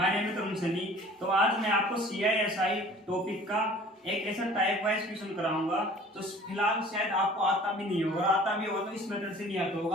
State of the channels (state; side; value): normal; both; correlation 0.48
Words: name is Tarun Sunny. तो आज मैं आपको CISI टॉपिक का एक ऐसा टाइप वाइज क्वेश्चन कराऊंगा। तो फिलहाल शायद आपको आता भी नहीं होगा, आता भी होगा तो इस मेथड से नहीं आता